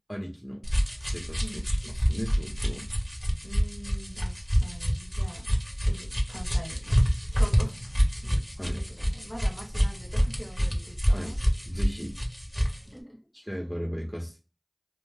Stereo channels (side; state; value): both; identical; correlation 1.00